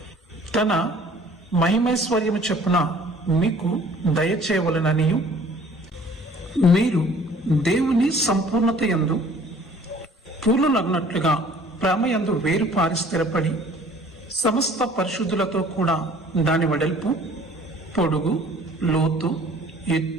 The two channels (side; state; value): both; normal; correlation 0.52